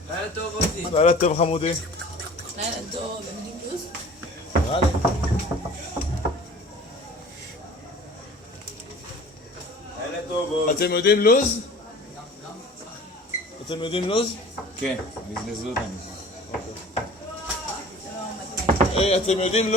לילה טוב אותי. לילה טוב חמודי. לילה טוב, הם יודעים לוז? נראה לי. לילה טוב עוד. אתם יודעים לוז? אתם יודעים לוז? כן, בזבזו אותנו. אתם יודעים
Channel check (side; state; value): both; normal; correlation 0.44